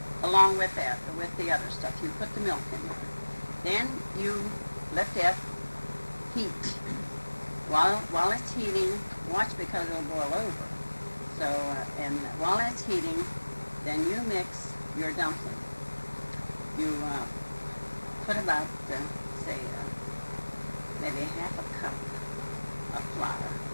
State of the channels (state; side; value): inverted; both; correlation -1.00